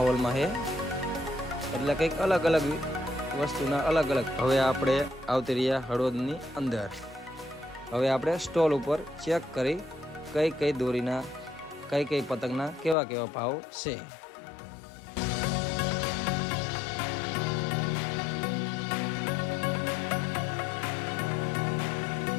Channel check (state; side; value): drops out; right; at 13.0 s